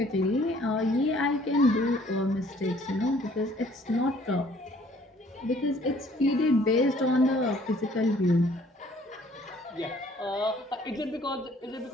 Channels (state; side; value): normal; both; correlation 0.58